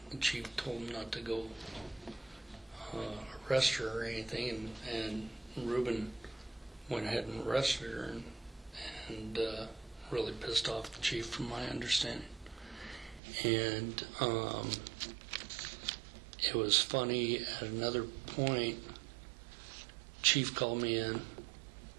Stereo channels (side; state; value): left; drops out; at 13.2 s